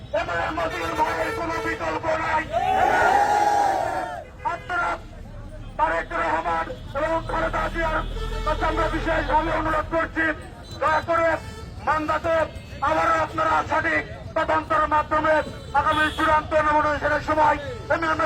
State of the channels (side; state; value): both; identical; correlation 1.00